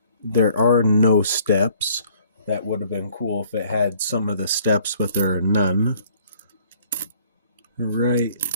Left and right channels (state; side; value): inverted; both; correlation -0.59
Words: there are no steps. That would have been cool if it had some of the steps, but there are none. Alright.